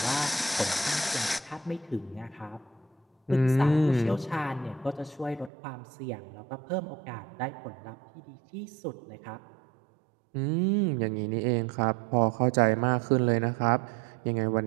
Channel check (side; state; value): left; drops out; at 5.5 s